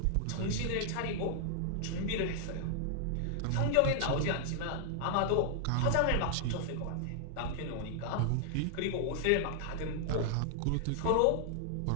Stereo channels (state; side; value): different; both; correlation -0.01